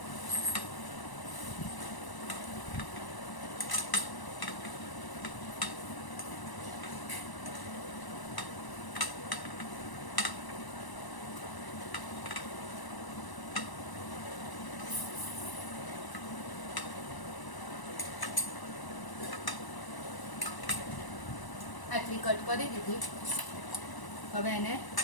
આટલી કટ કરી દીધી. હવે એને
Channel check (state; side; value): late; right; 1.0 ms